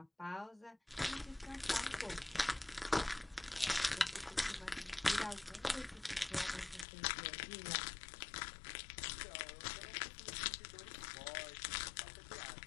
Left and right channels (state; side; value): drops out; right; at 6.9 s